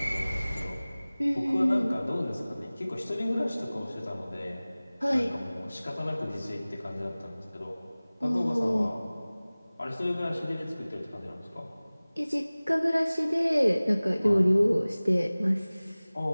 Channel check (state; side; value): inverted; both; correlation -0.99